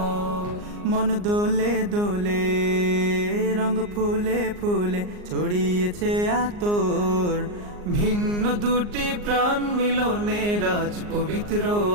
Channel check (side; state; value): left; late; 39 ms